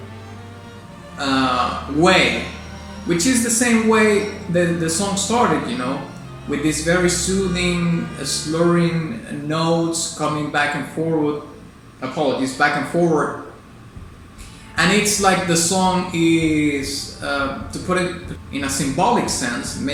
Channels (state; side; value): identical; both; correlation 1.00